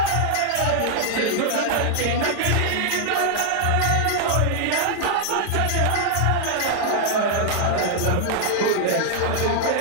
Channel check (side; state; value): both; different; correlation 0.00